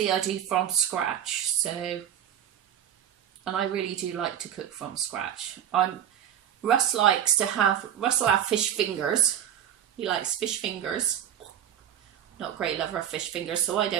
I do from scratch, so... And I really do like to cook from scratch. Russ will have fish fingers. He likes fish fingers. Not a great lover of fish fingers, so I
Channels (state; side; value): quieter; left; 10.1 dB